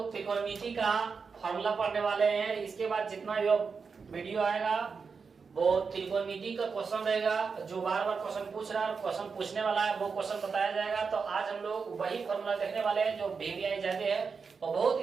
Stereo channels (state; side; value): quieter; left; 5.3 dB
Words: त्रिकोणमिति का फॉर्मूला पढ़ने वाले हैं। इसके बाद जितना भी वीडियो आएगा वो त्रिकोणमिति का क्वेश्चन रहेगा। जो बार बार क्वेश्चन पूछ रहा है, क्वेश्चन पूछने वाला है, वो क्वेश्चन बताया जाएगा। तो आज हम लोग वही फॉर्मूला देखने वाले हैं जो VBI जाते हैं और बहुत